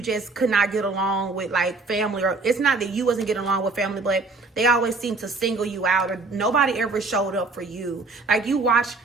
just could not get along with like family, or it's not that you wasn't getting along with family, but they always seem to single you out, or nobody ever showed up for you. Like, you watch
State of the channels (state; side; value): quieter; left; 3.7 dB